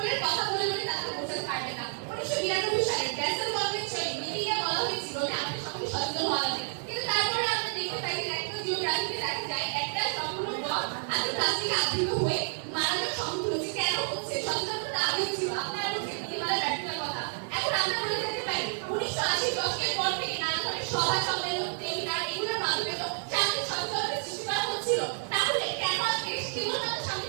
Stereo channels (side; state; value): left; silent; 58 dB below the other